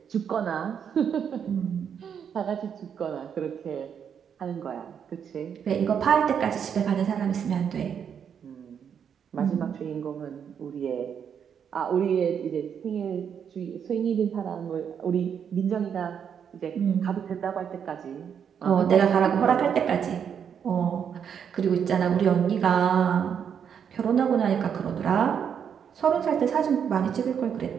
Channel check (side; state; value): left; quieter; 7.8 dB